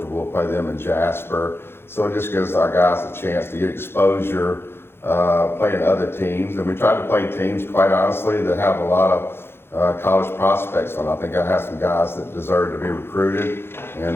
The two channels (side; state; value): right; late; 0.11 ms